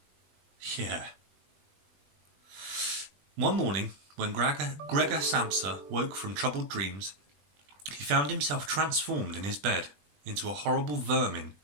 Yeah. One morning, when Gregor Samsa woke from troubled dreams, he found himself transformed in his bed into a horrible vermin.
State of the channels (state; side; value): late; left; 20 ms